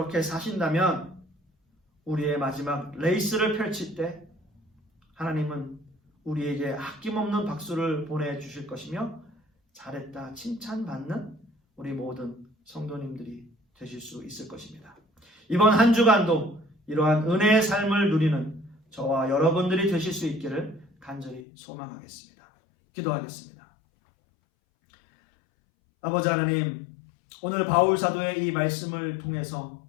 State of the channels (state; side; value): drops out; right; at 21.4 s